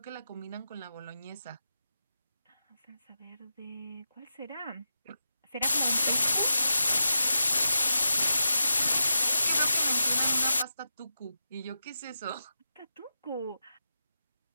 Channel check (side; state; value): both; inverted; correlation -0.89